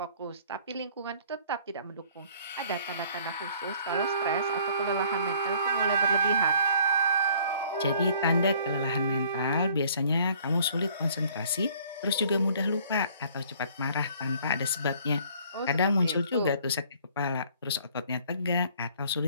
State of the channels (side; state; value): both; inverted; correlation -0.57